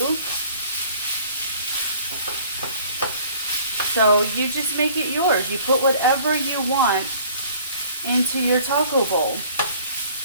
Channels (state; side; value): inverted; both; correlation -0.54